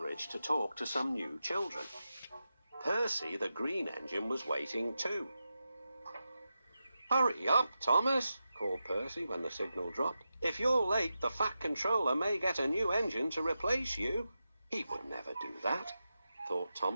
to talk to some new children. Percy, the green engine, was waiting too. "Hurry up, Thomas," called Percy when the signal dropped. "If you're late, the Fat Controller may get a new engine to replace you." He would never do that, thought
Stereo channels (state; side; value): inverted; both; correlation -0.90